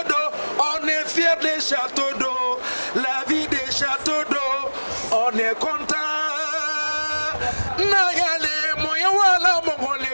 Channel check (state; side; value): inverted; both; correlation -1.00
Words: d'eau, on est fiers des châteaux d'eau, la vie des châteaux d'eau, on est content. Nayale moya wala mongole